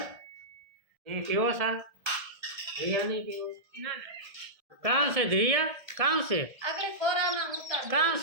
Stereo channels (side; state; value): left; late; 1.7 ms